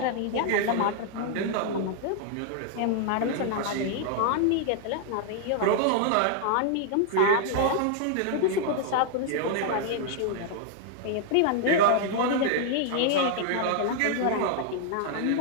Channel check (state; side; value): different; both; correlation 0.00